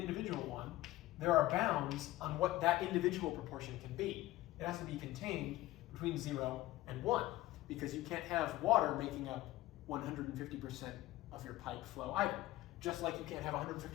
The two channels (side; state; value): right; quieter; 16.7 dB